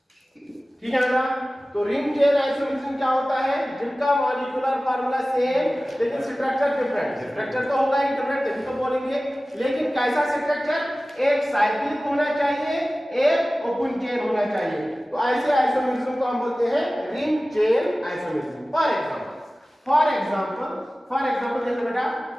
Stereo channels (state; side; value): normal; both; correlation 0.97